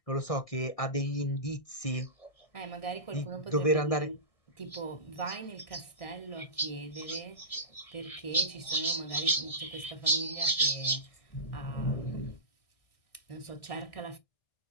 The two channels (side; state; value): right; late; 1.6 ms